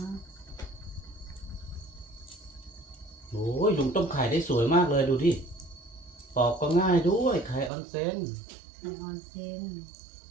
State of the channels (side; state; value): left; drops out; at 7.7 s